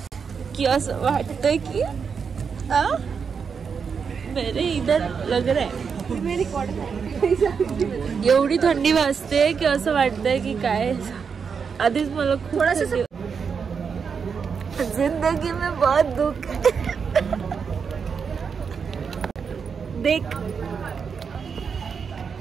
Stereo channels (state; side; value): quieter; left; 6.1 dB